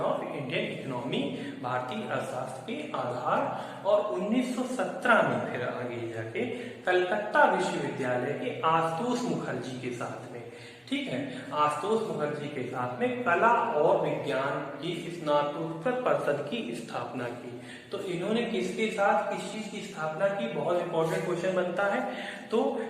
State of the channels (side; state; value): both; identical; correlation 1.00